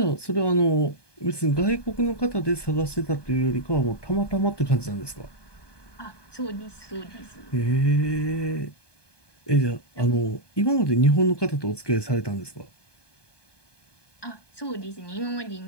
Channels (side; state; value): right; late; 1.2 ms